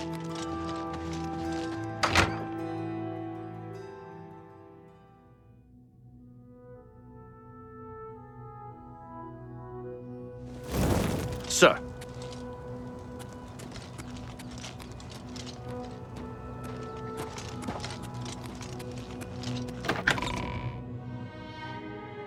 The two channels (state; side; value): identical; both; correlation 1.00